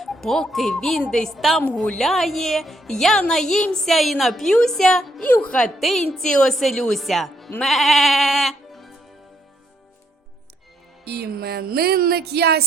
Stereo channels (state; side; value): normal; both; correlation 0.73